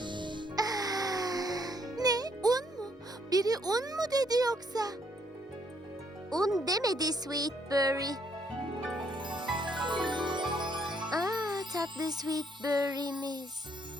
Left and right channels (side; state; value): both; normal; correlation 0.69